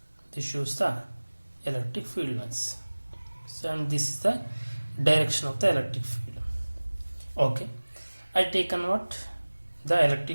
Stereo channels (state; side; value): inverted; both; correlation -1.00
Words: This shows the electric field lines. So and this is the direction of the electric field. Okay, I taken what the